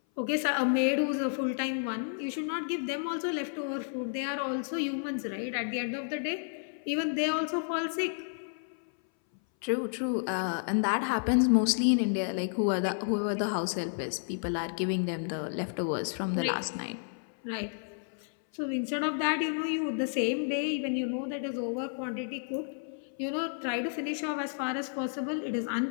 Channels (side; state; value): right; silent; 57 dB below the other